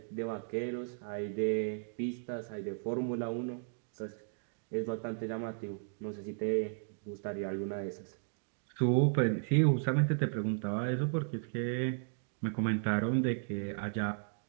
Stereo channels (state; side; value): silent; left; digital silence